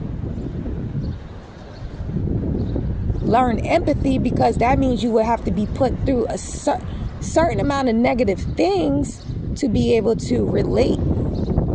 learn empathy, because that means you would have to be put through a certain amount of negative things to be able to relate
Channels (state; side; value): identical; both; correlation 1.00